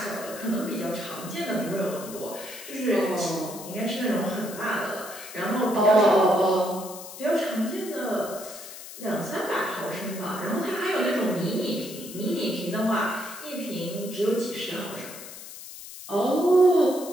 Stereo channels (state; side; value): noise; left; hiss, 13 dB below the sound